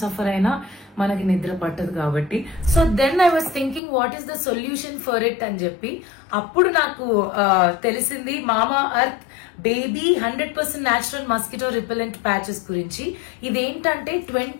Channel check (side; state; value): right; drops out; at 3.8 s